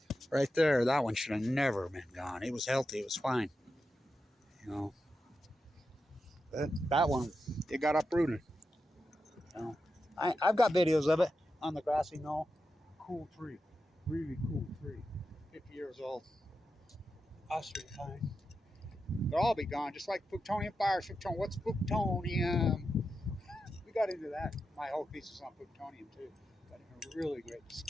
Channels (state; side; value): normal; both; correlation 0.89